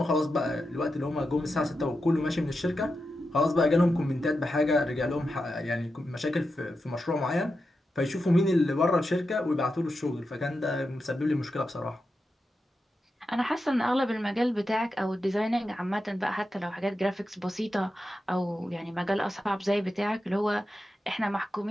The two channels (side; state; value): both; normal; correlation 0.89